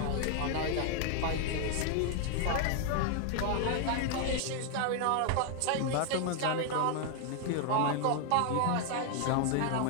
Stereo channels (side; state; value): both; different; correlation 0.00